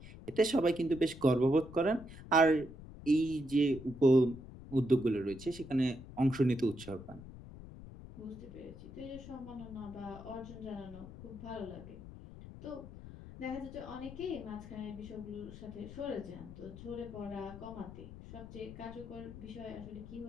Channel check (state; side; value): noise; left; rumble, 14 dB below the sound